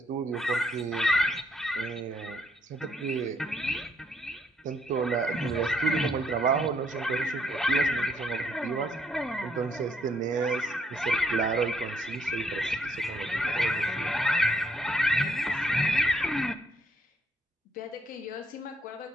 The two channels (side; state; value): both; normal; correlation 0.71